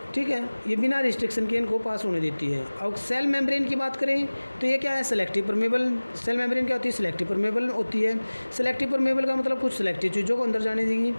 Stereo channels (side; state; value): both; inverted; correlation -1.00